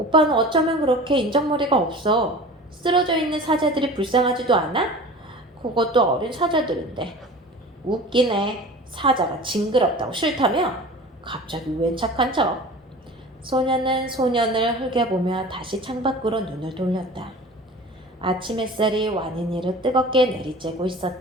어쩌면 그렇게 인정머리가 없어. 쓰러져 있는 사자들이 불쌍하지도 않아? 그것도 어린 사자들인데. 웃기네. 사자가 징그럽다고 싫다며? 갑자기 웬 착한 척? 소녀는 소년을 흘겨보며 다시 창밖으로 눈을 돌렸다. 아침 햇살이 완인이를 뜨겁게 내리쬐고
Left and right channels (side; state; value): both; normal; correlation 0.39